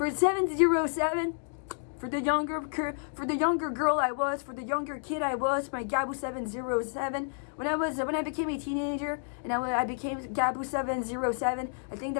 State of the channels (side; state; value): right; silent; digital silence